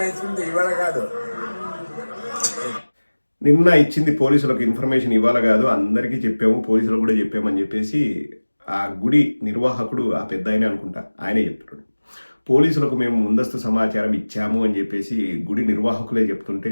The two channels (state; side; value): inverted; both; correlation -1.00